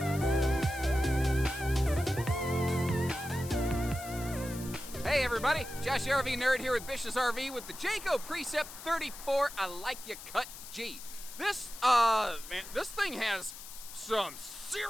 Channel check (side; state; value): left; noise; hiss, 13 dB below the sound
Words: Hey everybody, Josh the RV Nerd here with Bish's RV with the Jayco Precept 34 I Like Ya Cut G. This thing has some